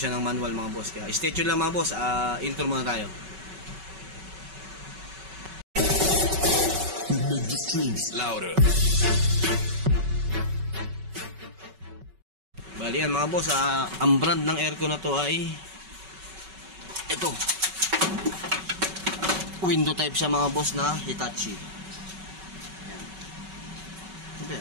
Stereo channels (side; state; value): left; late; 5.3 ms